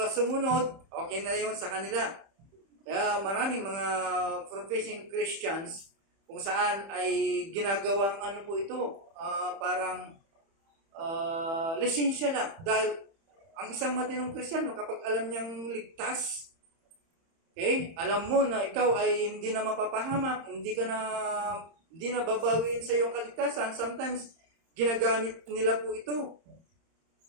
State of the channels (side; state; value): left; late; 30 ms